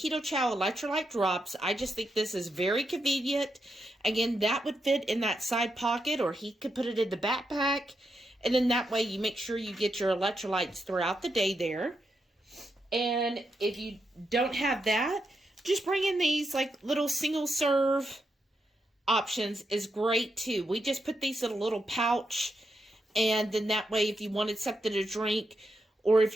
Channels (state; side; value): normal; both; correlation 0.84